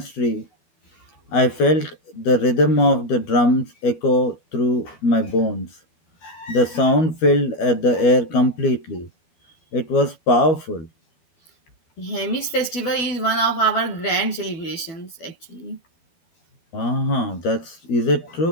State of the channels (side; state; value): right; late; 12 ms